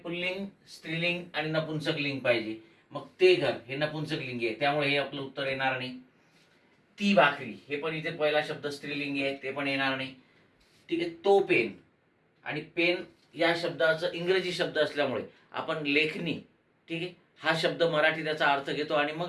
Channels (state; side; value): identical; both; correlation 1.00